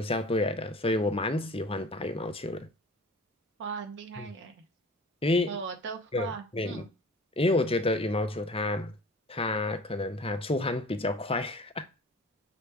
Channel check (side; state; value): both; normal; correlation 0.43